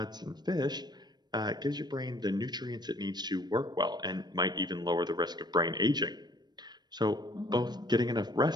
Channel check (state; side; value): late; left; 0.20 ms